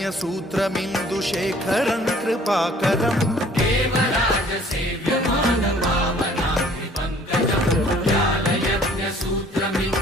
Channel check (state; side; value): normal; both; correlation 0.55